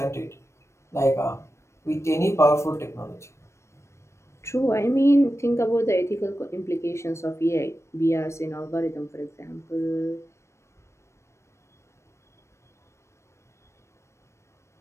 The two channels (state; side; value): late; right; 0.13 ms